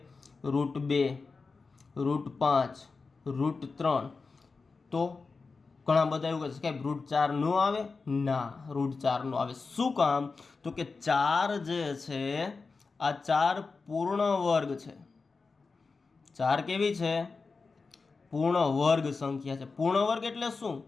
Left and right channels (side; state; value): right; quieter; 4.3 dB